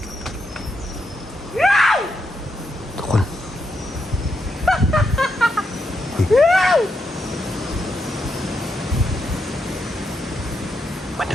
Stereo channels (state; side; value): normal; both; correlation 0.82